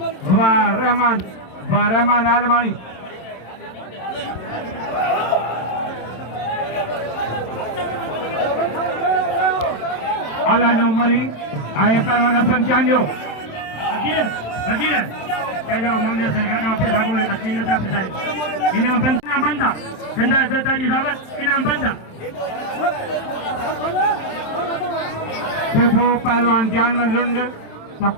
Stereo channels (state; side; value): late; right; 27 ms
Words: रहमान आलमानी अलानु मरी आए पहलवान Hasan चांजो अकीर kalau mungkin sekarang apa lagu akhirnya tak terjadi. Ini benda terjadi dapat ini benda. Itu पहलवान जान में लुंड तो